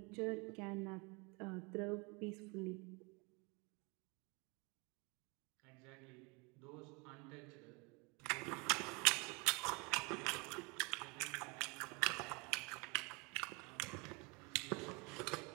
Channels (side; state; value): left; quieter; 29.5 dB